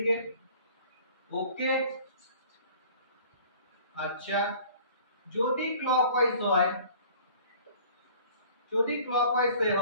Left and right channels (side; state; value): both; inverted; correlation -0.49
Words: ওকে, আচ্ছা যদি ক্লকওয়াইজ হয়, যদি ক্লকওয়াইজ